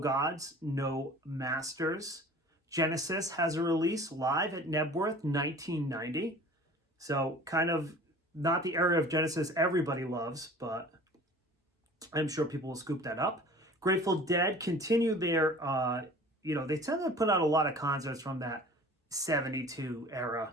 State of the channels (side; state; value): both; normal; correlation 0.44